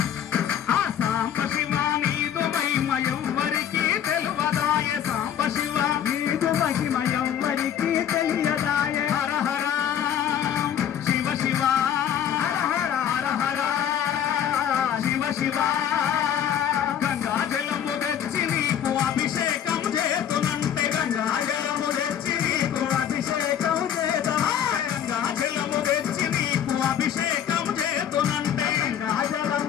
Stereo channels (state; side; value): quieter; right; 9.6 dB